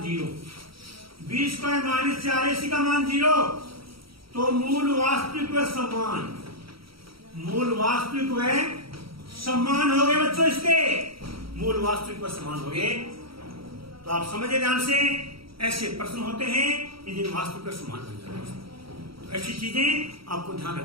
0। बी स्क्वायर -4ac का मान 0, तो मूल वास्तविक व समान, मूल वास्तविक व समान हो गए बच्चों। इसके मूल वास्तविक व समान हो गए। तो आप समझे ध्यान से, ऐसे प्रश्न होते हैं कि जिन वास्तविक व समान बन जाते हैं। तो ऐसी चीजें आपको ध्यान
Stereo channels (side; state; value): left; late; 0.75 ms